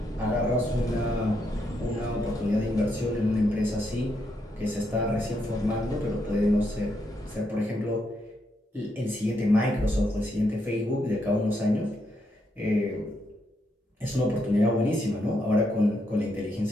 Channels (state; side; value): normal; both; correlation 0.79